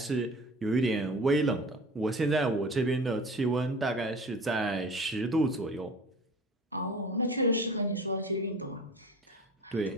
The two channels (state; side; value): normal; both; correlation 0.40